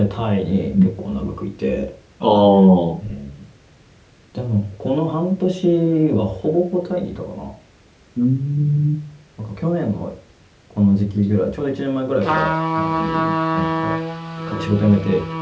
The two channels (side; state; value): both; identical; correlation 1.00